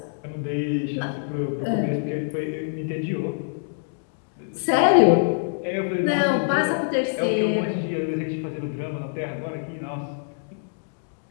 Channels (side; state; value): right; silent; digital silence